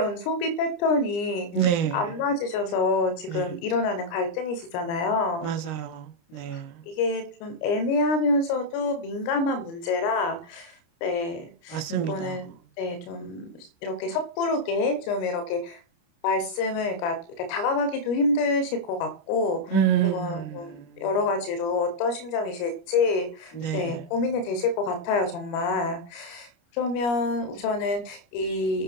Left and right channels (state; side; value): late; right; 29 ms